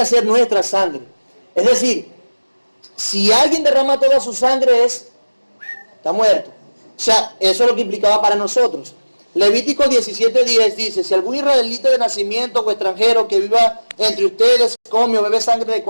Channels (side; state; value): both; inverted; correlation -1.00